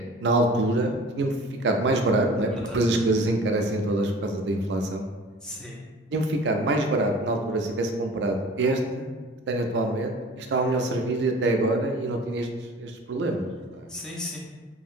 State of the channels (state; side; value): normal; both; correlation 0.44